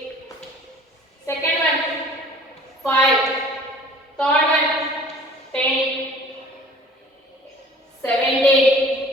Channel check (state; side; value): normal; both; correlation 0.49